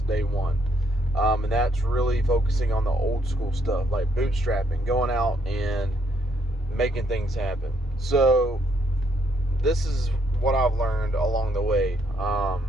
day one. And that's really focusing on the old school stuff, like bootstrapping, going out and making things happen. So this is what I've learned along the way.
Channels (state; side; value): normal; both; correlation 0.72